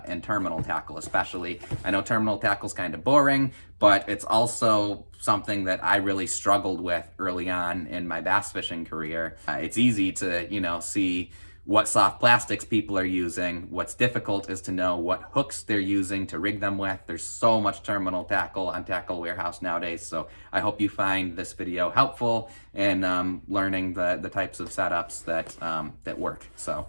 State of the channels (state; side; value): inverted; both; correlation -1.00